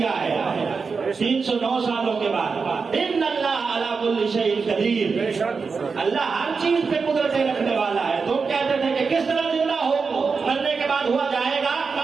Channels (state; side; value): quieter; left; 5.0 dB